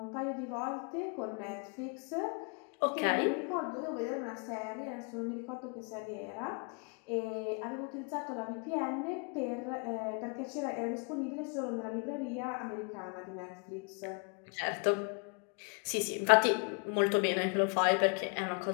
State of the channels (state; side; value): quieter; right; 36.1 dB